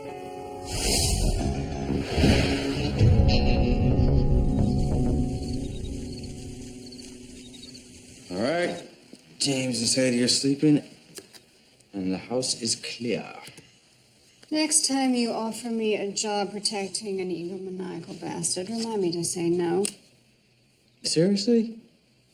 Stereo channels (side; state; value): both; identical; correlation 1.00